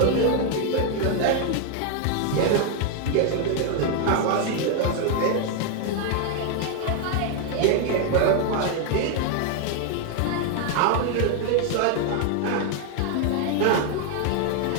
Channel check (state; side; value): different; both; correlation 0.00